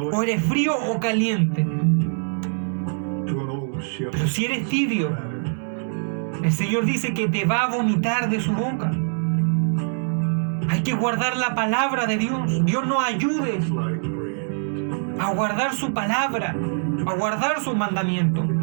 O eres frío o caliente. Pero si eres tibio, el Señor dice que te va a vomitar de su boca. Hay que guardar la palabra de Dios. Dios nos ayude a guardar su palabra, a guardar sus mandamientos.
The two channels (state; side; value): silent; left; digital silence